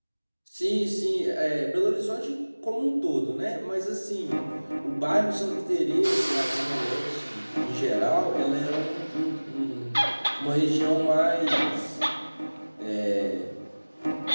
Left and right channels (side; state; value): both; inverted; correlation -1.00